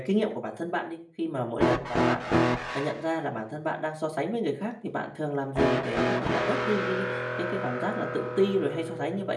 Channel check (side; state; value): both; identical; correlation 1.00